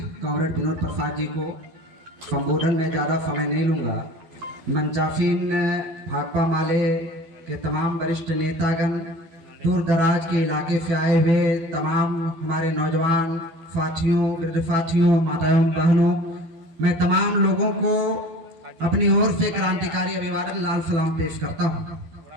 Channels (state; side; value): late; left; 12 ms